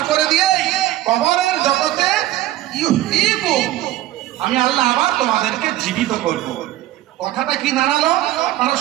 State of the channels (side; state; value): left; quieter; 15.0 dB